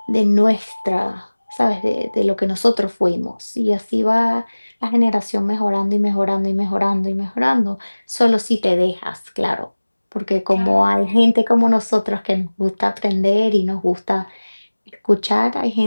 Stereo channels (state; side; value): inverted; both; correlation -1.00